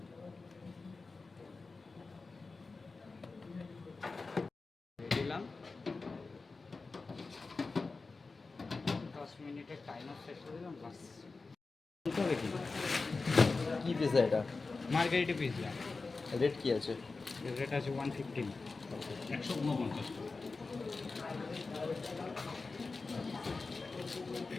দিলাম 10 মিনিটের টাইমার শেষ করে দিলাম, বাস। হবে কি কি পিৎজা এটা? Margarita pizza. রেট কি আছে? রেট আছে 115। 149।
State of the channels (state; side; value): quieter; right; 4.0 dB